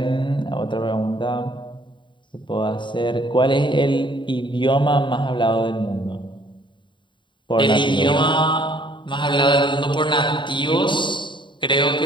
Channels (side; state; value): right; late; 0.23 ms